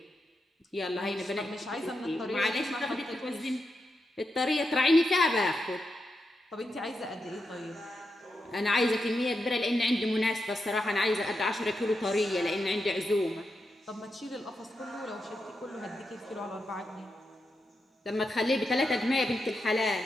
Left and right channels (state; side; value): normal; both; correlation 0.86